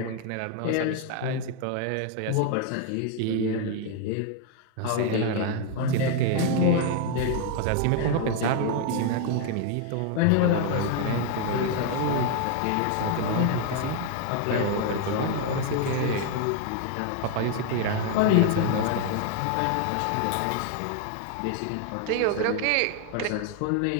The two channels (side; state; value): both; different; correlation 0.00